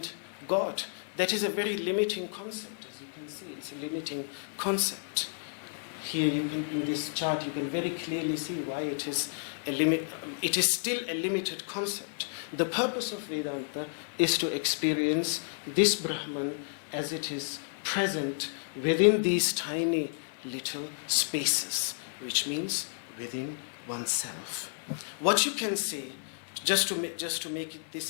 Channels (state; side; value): silent; right; 57 dB below the other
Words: God. That is a very limiting concept, as you can see. It's a limiting concept. Here you can, in this chart, you can very clearly see why it is it is still a limited concept. The purpose of Vedanta is to experience this Brahman as it is present within these tiny little spaces, which means within oneself. What you can say, just to make